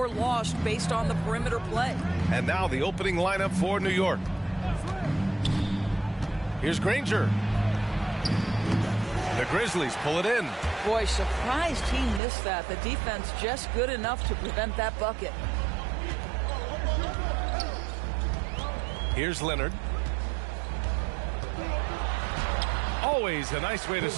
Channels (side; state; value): left; drops out; at 12.2 s